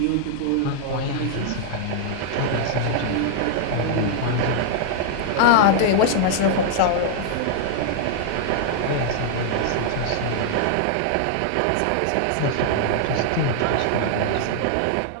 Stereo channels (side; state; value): both; different; correlation -0.01